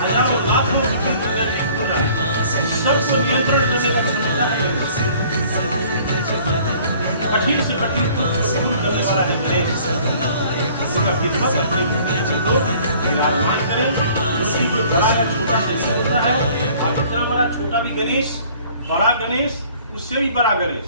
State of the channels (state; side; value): inverted; both; correlation -0.54